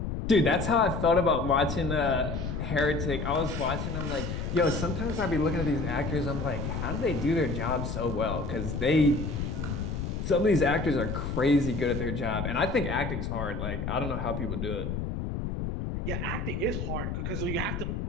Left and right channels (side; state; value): left; noise; rumble, 3 dB below the sound